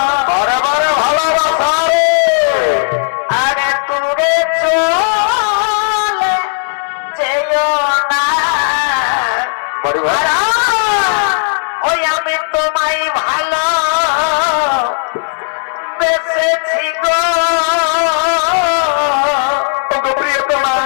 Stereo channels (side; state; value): right; silent; digital silence